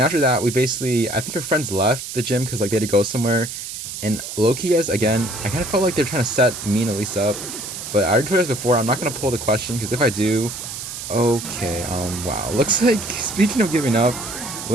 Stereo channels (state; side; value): noise; right; hiss, 8 dB below the sound